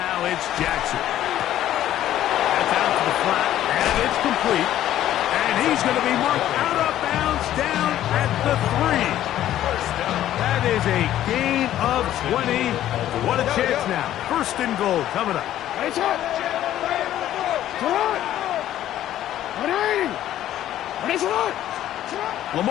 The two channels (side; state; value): right; quieter; 12.5 dB